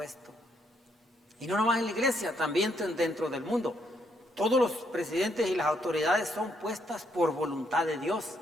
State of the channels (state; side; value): normal; both; correlation 0.73